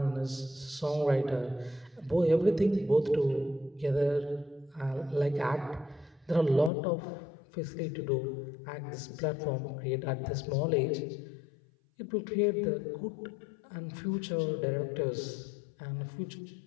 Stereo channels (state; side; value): drops out; right; at 6.7 s